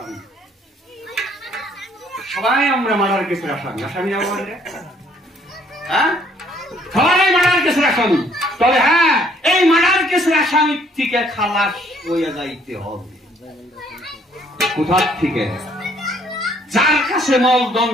সবাই আমরা মার্ডার কেসের আসামি। আসামি না বললে, হ্যাঁ, সবাই মার্ডার কেসের আসামি। তবে হ্যাঁ, এই মার্ডার কেসের আসামি থেকে খালাস হয়ে যাইতে হবে। কোথার থেকে? যার কাছে মলদম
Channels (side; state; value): both; normal; correlation 0.63